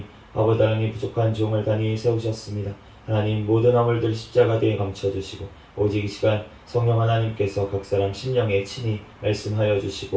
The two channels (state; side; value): identical; both; correlation 1.00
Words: 아버지 하나님 부족한 종을 단히 세우셨습니다. 하나님 모든 허물들 십자가 뒤에 감춰주시고 오직 이 시간 성령 하나님께서 각 사람 심령에 친히 말씀하여